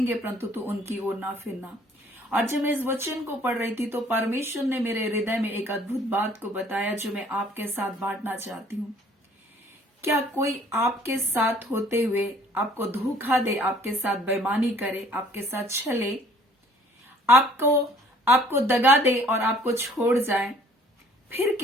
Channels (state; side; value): normal; both; correlation 0.56